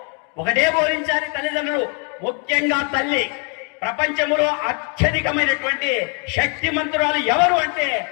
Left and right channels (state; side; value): quieter; right; 36.6 dB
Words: ఒకటే బోధించాలి తల్లిదండ్రులు, ముఖ్యంగా తల్లి. ప్రపంచంలో అత్యధికమైనటువంటి శక్తిమంతురాలు ఎవరు అంటే